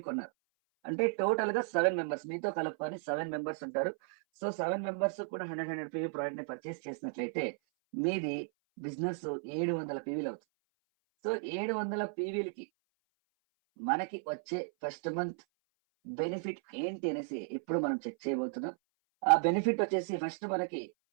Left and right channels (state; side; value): silent; left; 55 dB below the other